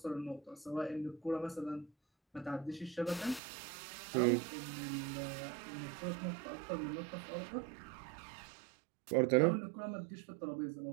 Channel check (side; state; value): left; drops out; at 3.4 s